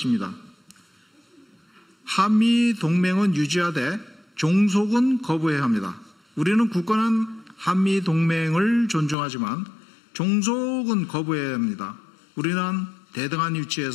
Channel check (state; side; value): drops out; right; at 9.2 s